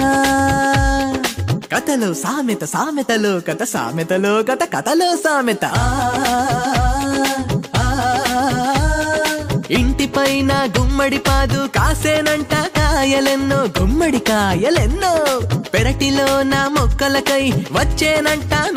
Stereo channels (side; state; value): both; identical; correlation 1.00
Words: కథలో సామెత సామెతలో కథ సామెతలో కథ కథలో సామెత. ఇంటిపైన గుమ్మడి పాదు కాసేనంట కాయలెన్నో గుమ్మడి కాయలెన్నో పెరటిలో నా మొక్కలకై వచ్చేనంట